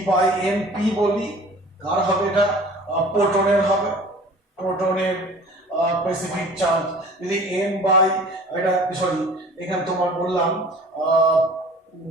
বাই এম পি বলি, কার হবে এটা, প্রোটনের হবে, প্রোটনের স্পেসিফিক চার্জ। যদি এম বাই এটা সরি এখানে তোমার বললাম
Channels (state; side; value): normal; both; correlation 0.46